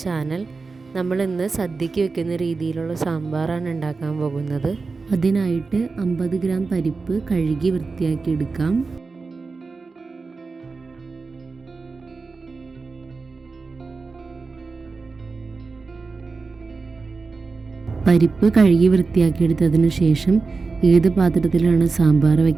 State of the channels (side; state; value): left; quieter; 4.2 dB